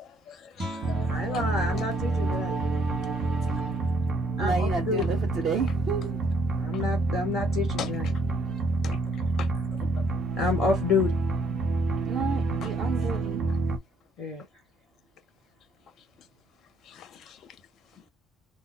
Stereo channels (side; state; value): both; normal; correlation 0.67